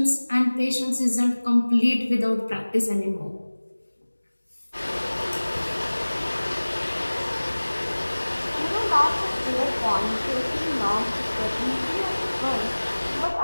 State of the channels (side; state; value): both; inverted; correlation -1.00